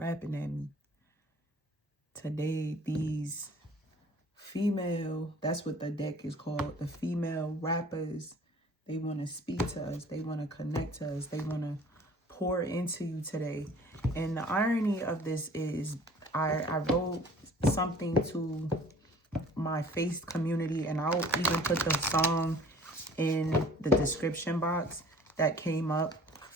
at me. Today, these female, that's what the deck is called, the female rappers, they want to speak to us. They want to connect to us. They want to pour into you today. And the irony of this is I wrote something to my Face community, and I'll even put the song in the description box that came up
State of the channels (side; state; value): both; normal; correlation 0.50